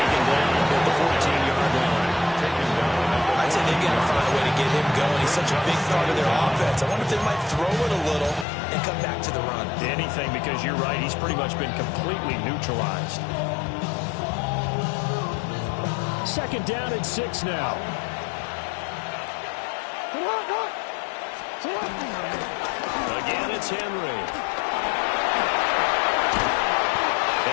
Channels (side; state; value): right; drops out; at 8.5 s